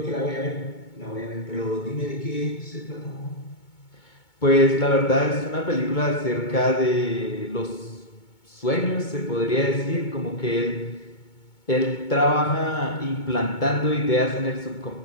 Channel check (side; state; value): right; late; 2.2 ms